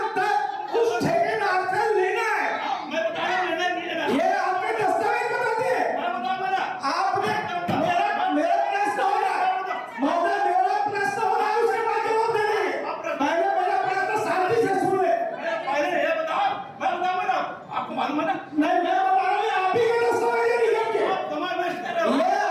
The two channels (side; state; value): both; identical; correlation 1.00